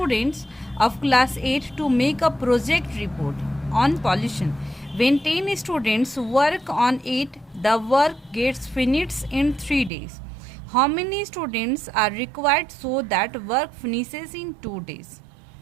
of class 8 to make a project report on pollution. When 10 students work on it, the work gets finished in 3 days. How many students are required so that work finishes in 2 days?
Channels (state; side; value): drops out; left; at 9.9 s